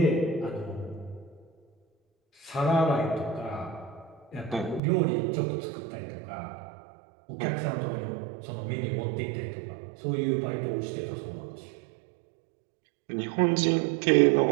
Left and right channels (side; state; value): left; drops out; at 4.8 s